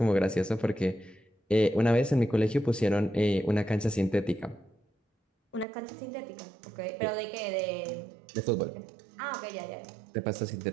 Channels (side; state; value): left; drops out; at 5.7 s